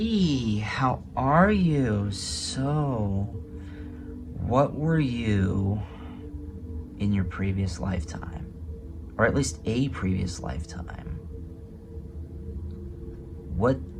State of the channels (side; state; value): both; identical; correlation 1.00